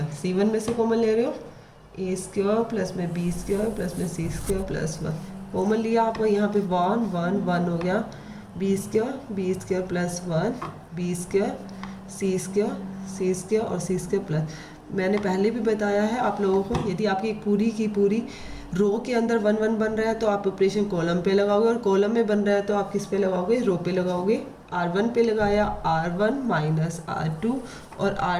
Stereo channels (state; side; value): identical; both; correlation 1.00